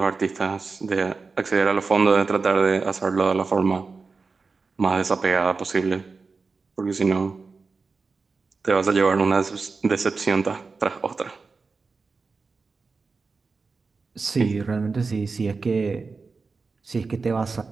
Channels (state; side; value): quieter; left; 4.4 dB